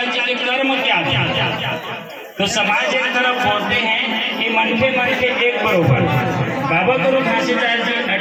जी के कर्म क्या थे? तो समाज एक तरफ बोलते हैं कि मन के एक बरोबर। बाबा गुरु घासीदास जी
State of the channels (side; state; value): both; identical; correlation 1.00